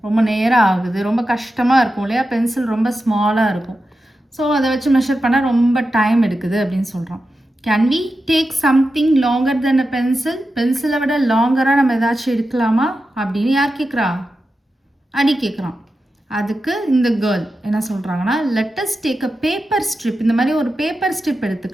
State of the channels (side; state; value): both; normal; correlation 0.91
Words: ரொம்ப நேரம் ஆகுது, ரொம்ப கஷ்டமாக இருக்கும் இல்லையா, பென்சில் ரொம்ப ஸ்மாலாக இருக்கும். ஸோ அதை வச்சு மெஷர் பண்ணால் ரொம்ப டைம் எடுக்குது அப்படின்னு சொல்கிறான். Can we take something longer then a pencil? பென்சிலை விட லாங்கராக நம்ம ஏதாச்சும் எடுக்கலாமா அப்படின்னு யார் கேட்குறா? அடி கேட்குறான். அதுக்கு இந்த கேர்ள் என்ன சொல்கிறாங்கன்னா, let us take a paper strip. இந்த மாதிரி ஒரு பேப்பர் ஸ்ட்ரிப்